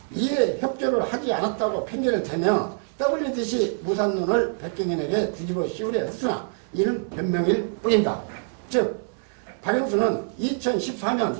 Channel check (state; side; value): silent; left; digital silence